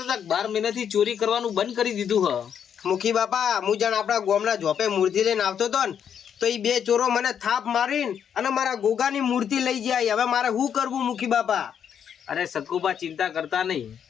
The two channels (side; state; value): right; quieter; 8.3 dB